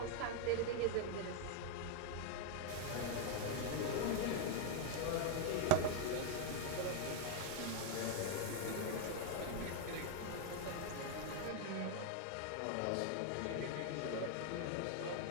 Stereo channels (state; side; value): different; both; correlation 0.00